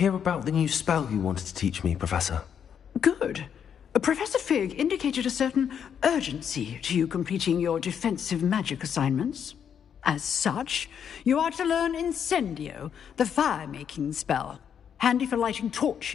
about the new spell you wanted to teach me, Professor. Good. Professor Fig indicated a certain urgency to you completing your defensive magic assignments. As such, you are to learn Incendio, the fire-making spell, handy for lighting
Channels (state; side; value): quieter; right; 8.1 dB